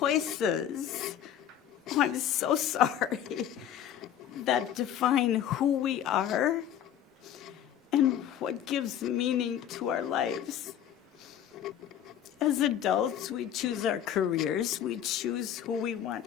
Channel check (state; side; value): quieter; right; 10.2 dB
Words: oh, I'm so sorry, that define who we are and what gives meaning to our lives. As adults, we choose our careers, we choose who we want,